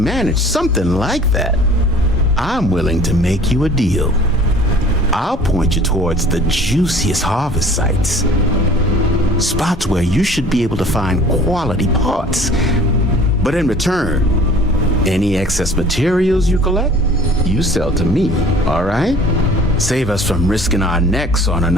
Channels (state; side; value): normal; both; correlation 0.48